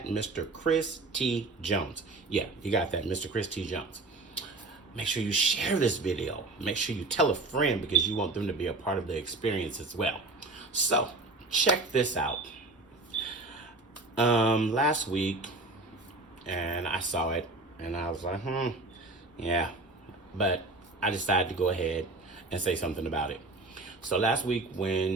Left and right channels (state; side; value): quieter; left; 3.2 dB